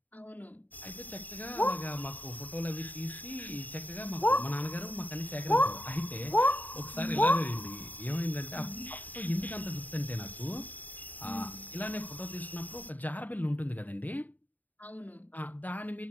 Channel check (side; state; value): right; late; 0.082 ms